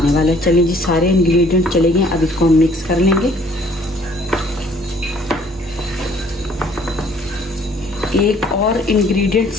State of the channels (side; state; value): both; normal; correlation 0.58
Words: वाला है। चलिए जी सारे इंग्रेडिएंट चले गए, अब इसको हम मिक्स कर लेंगे। एक और इंग्रेडिएंट